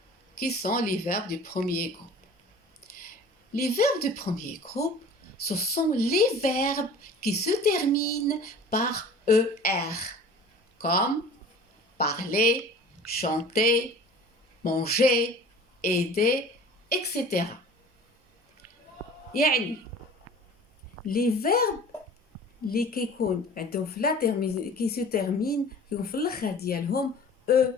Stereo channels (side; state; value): both; normal; correlation 0.44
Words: qui sont les verbes du premier groupe? Les verbes du premier groupe, ce sont les verbes qui se terminent par ER, comme parler, chanter, manger, aider, etc. يعني les verbes اللي كيكون عندهم في لا كي se termine كيكون في الاخر ديالهم